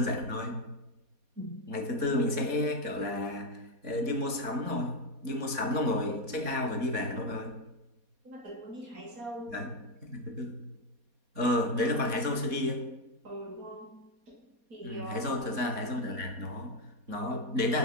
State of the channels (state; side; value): late; left; 4.2 ms